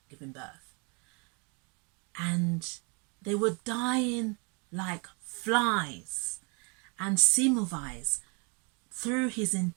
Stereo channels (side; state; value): left; quieter; 33.4 dB